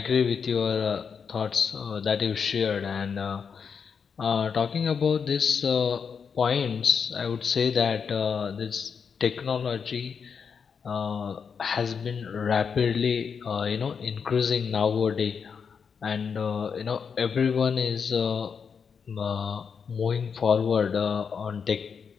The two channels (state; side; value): quieter; right; 6.3 dB